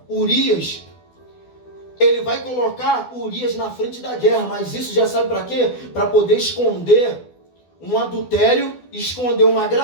Urias? Ele vai colocar Urias na frente da guerra, mas isso já sabe para quê? Para poder esconder um adultério, esconder uma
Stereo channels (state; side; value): late; right; 12 ms